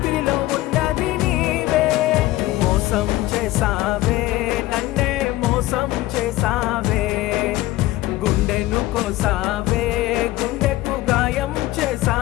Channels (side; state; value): right; quieter; 16.9 dB